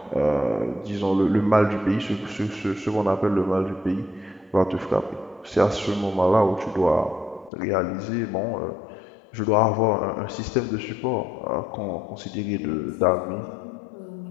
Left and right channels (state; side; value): drops out; right; at 7.5 s